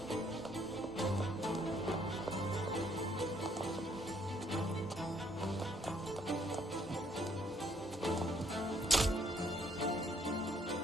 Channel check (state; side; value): normal; both; correlation 0.67